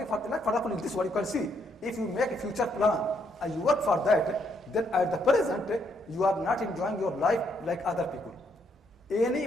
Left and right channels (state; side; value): normal; both; correlation 0.73